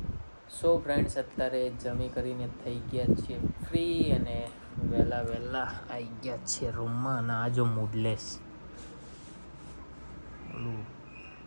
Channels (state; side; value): inverted; both; correlation -1.00